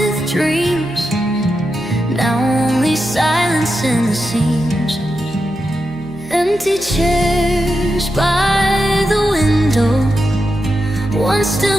dreams, now only silence in the seams. Empty chairs by the window, one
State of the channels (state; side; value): noise; right; hum, 20 dB below the sound